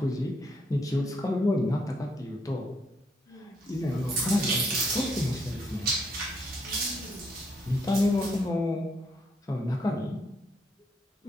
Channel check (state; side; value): normal; both; correlation 0.74